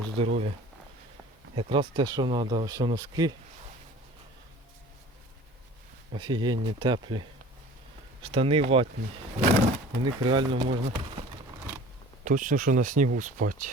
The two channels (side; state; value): both; normal; correlation 0.44